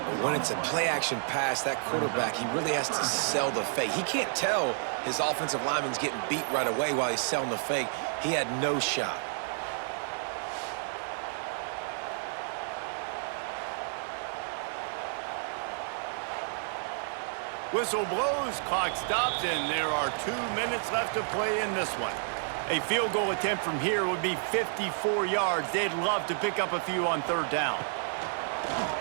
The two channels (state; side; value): silent; left; digital silence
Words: When it's a play-action pass, that quarterback, he really has to sell the fake. He can't tell his offensive lineman's getting beat right away while he's selling the fake. He had no shot. Whistle blows, clock stops, and there are 2 minutes left to play in this one. A field goal attempt from here would be 54 yards. They'd love to pick up a few on third down.